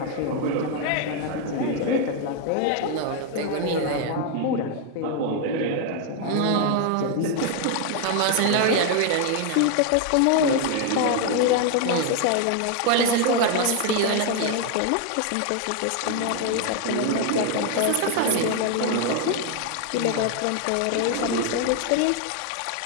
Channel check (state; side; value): different; both; correlation 0.01